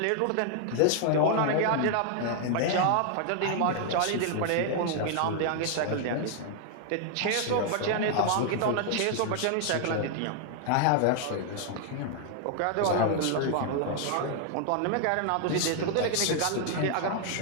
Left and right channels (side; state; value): both; different; correlation 0.00